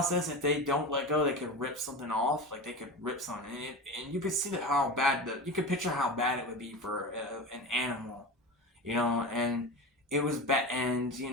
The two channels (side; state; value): both; normal; correlation 0.26